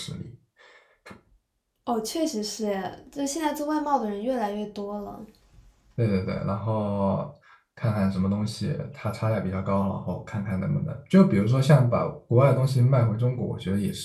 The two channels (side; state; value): both; identical; correlation 1.00